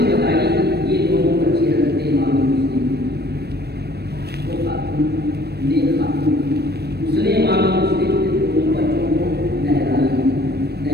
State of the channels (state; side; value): late; left; 0.47 ms